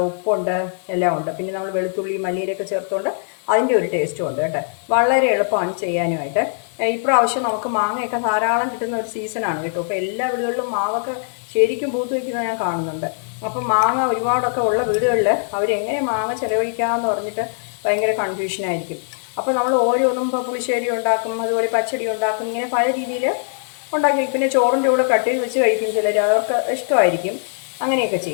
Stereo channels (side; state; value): right; silent; 65 dB below the other